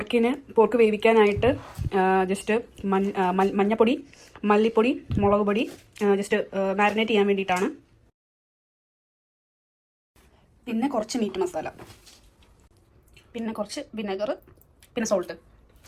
വേവിക്കാനായിട്ട് ജസ്റ്റ് മഞ്ഞപ്പൊടി, മല്ലിപ്പൊടി, മുളക് പൊടി ജസ്റ്റ് മാരിനേറ്റ് ചെയ്യാൻ വേണ്ടിയിട്ടാണ്. പിന്നെ കുറച്ച് മീറ്റ് മസാല, പിന്നെ കുറച്ച് വിനെഗർ, പിന്നെ സോൾട്ട്,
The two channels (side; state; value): both; identical; correlation 1.00